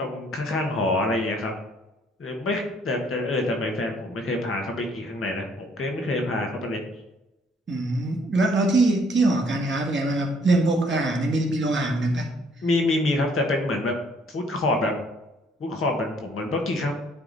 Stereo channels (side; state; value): both; normal; correlation 0.63